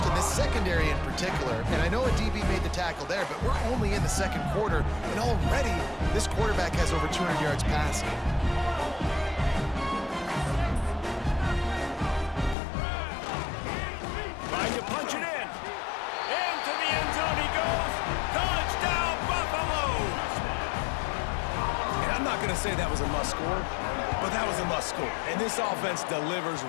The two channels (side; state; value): right; drops out; at 12.6 s